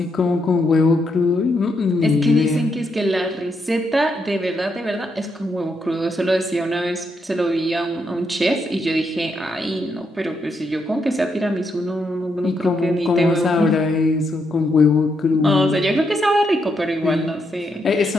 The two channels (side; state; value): both; normal; correlation 0.79